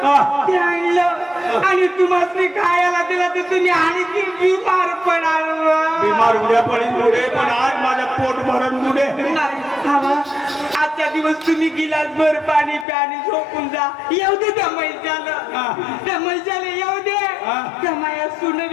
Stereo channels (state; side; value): drops out; right; at 12.9 s